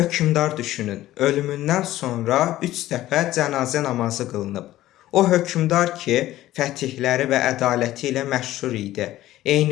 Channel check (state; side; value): quieter; right; 14.9 dB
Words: düşünün, ölümündən sonra 3 dəfə cənazə namazı qılınıb. O hökmdar ki, fətihləri və ədaləti ilə məşhur idi.